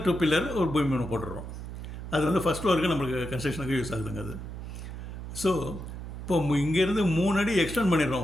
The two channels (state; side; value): noise; right; hum, 9 dB below the sound